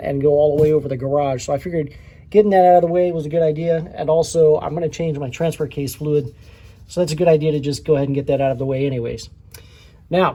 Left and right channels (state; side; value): identical; both; correlation 1.00